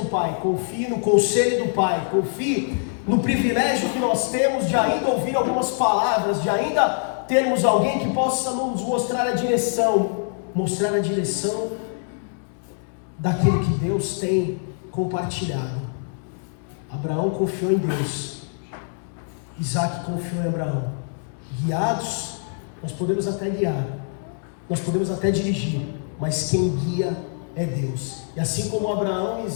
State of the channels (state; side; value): silent; right; 63 dB below the other